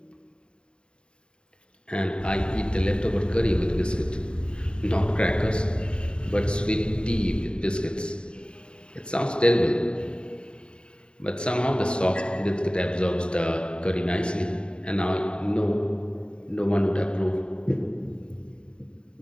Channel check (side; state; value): right; late; 0.051 ms